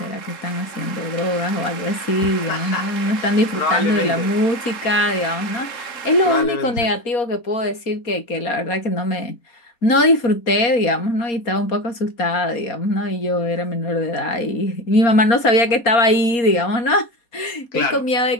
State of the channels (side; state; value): right; late; 4.3 ms